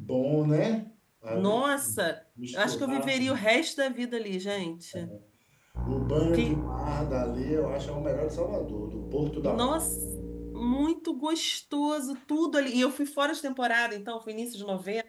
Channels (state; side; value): identical; both; correlation 1.00